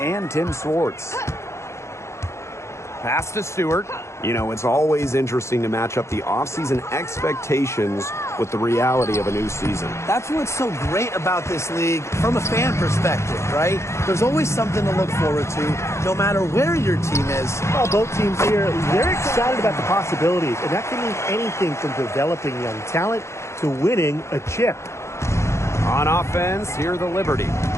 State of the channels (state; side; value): late; right; 0.13 ms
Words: Tim Swartz. Pass to Stewart. You know, it's always interesting to match up the offseason expectations with the reality of a new season. That's what's so great about this league from a fan perspective, right? There's always something to look forward to, no matter where your team is. Well, both teams here, they're excited about the possibilities, and that can mean anything from developing young talent to winning a chip. On offense, here the Liberty.